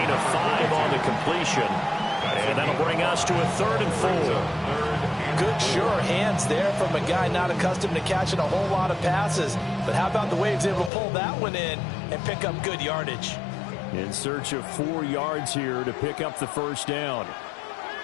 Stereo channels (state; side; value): drops out; right; at 10.9 s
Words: of 5 on the completion. And that'll bring us to a 3rd and 4. Good, sure hands there from a guy not accustomed to catching a whole lot of passes. But how about the way he was able to pull that one in and pick up good yardage? In search of 4 yards here to pick up the first down.